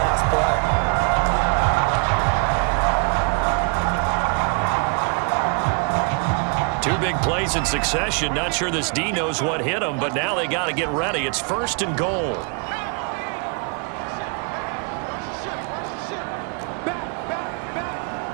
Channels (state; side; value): quieter; left; 37.4 dB